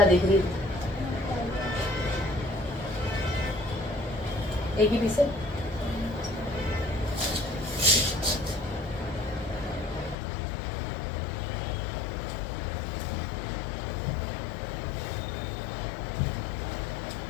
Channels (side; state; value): right; drops out; at 10.2 s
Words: देख रही हूँ, एक ही पीस है।